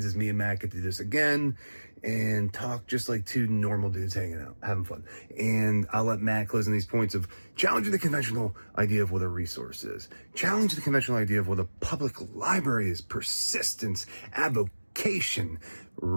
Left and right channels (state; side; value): inverted; both; correlation -1.00